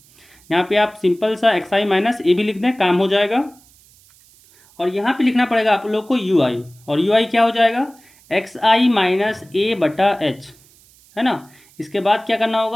यहाँ पे आप सिंपल सा XI माइनस A भी लिख दें, काम हो जाएगा। और यहाँ पे लिखना पड़ेगा आप लोग को UI, और UI क्या हो जाएगा, XI माइनस A बटा H, है ना। इसके बाद क्या करना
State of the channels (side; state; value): right; noise; hiss, 28 dB below the sound